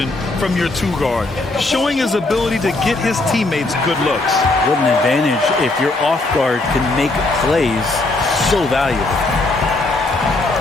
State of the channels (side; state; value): right; quieter; 3.0 dB